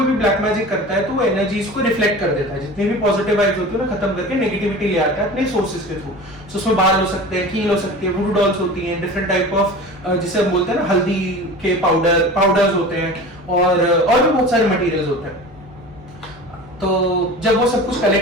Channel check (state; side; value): normal; both; correlation 0.36